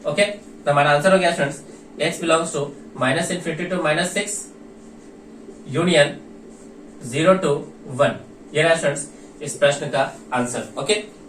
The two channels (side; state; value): both; identical; correlation 1.00